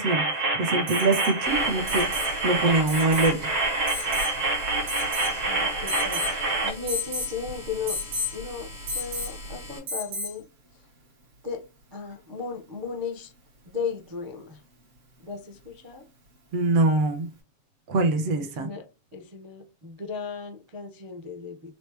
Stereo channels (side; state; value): left; late; 7.2 ms